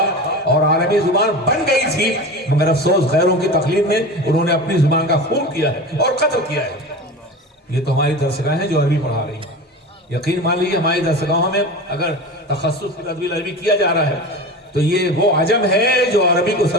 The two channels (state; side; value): normal; both; correlation 0.30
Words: اور عربی زبان بن گئی تھی، مگر افسوس غیروں کی تقلید میں انہوں نے اپنی زبان کا خون کیا ہے اور قتل کیا ہے۔ یہ تو ہماری درسگاہیں ہیں جو عربی پڑھا رہی ہیں۔ یقین مان لیجیے ہماری درسگاہوں میں اگر تخصص فی تدوین عربی کیا جا رہا ہے تو یہ وہ عجم ہے جو عربی کو